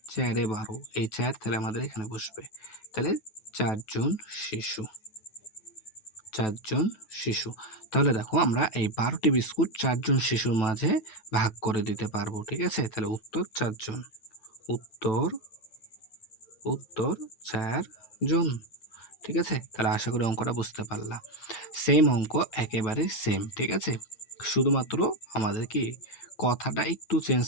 চারে ১২, এই ৪ তাহলে আমাদের এখানে বসবে। তাহলে ৪ জন শিশু, ৪ জন শিশু। তাহলে দেখো আমরা এই ১২ টি বিস্কুট ৪ জন শিশুর মাঝে ভাগ করে দিতে পারবো, ঠিক আছে? তাহলে উত্তর ৪ জন। উত্তর উত্তর ৪ জন, ঠিক আছে? তাহলে আশা করি অঙ্কটা বুঝতে পারলা। সেম অঙ্ক, একেবারে সেম, ঠিক আছে? শুধুমাত্র আমাদের কি কথাটা একটু চেঞ্জ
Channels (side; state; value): right; late; 9.2 ms